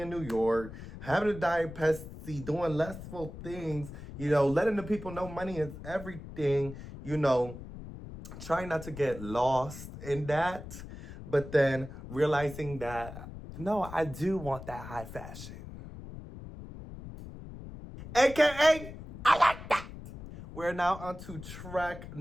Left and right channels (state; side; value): noise; left; rumble, 12 dB below the sound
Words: New York, having a diet Pepsi, doing lessful things, you know, letting the people know money is everything, you know, trying not to get lost in that, but then realizing that, no, I do want that high fashion. AKA, I like that. We're now on to track